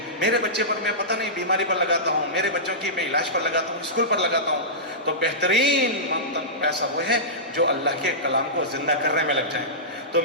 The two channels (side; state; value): both; normal; correlation -0.17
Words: میرے بچے پر میں پتہ نہیں بیماری پر لگاتا ہوں، میرے بچوں کی میں علاج پر لگاتا ہوں، اسکول پر لگاتا ہوں، تو بہترین پیسہ وہ ہے جو اللہ کے کلام کو زندہ کرنے میں لگ جائیں۔ تو